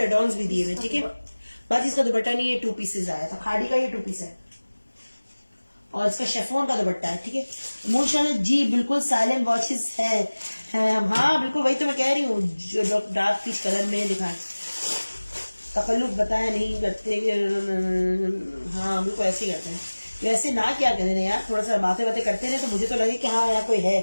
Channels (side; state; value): both; inverted; correlation -1.00